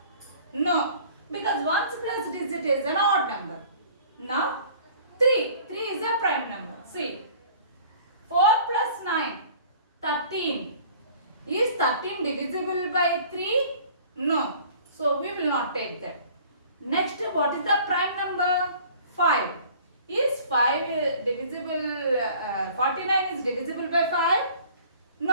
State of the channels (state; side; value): inverted; both; correlation -0.50